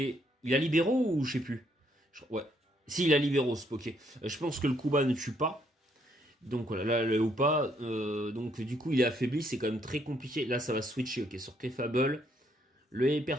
Il a libéraux ou je sais plus. Ouais. Si, il a libéraux ce Poké. Je pense que le Kuba ne tue pas. Donc voilà, là le Hoopa, donc du coup il est affaibli, c'est quand même très compliqué. Là ça va switcher, ok, sur Clefable. Le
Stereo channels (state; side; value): normal; both; correlation 0.71